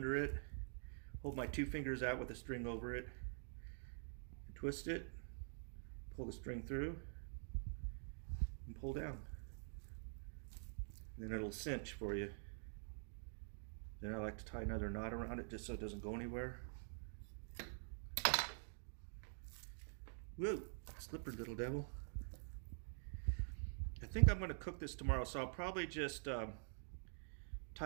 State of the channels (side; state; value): left; silent; digital silence